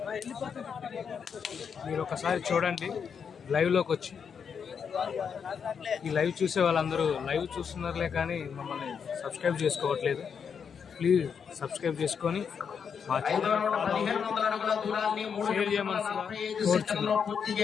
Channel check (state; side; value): quieter; right; 6.8 dB